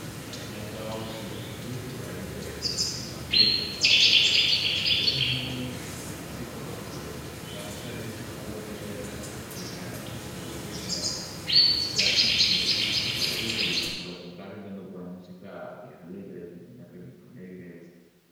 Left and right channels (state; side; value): identical; both; correlation 1.00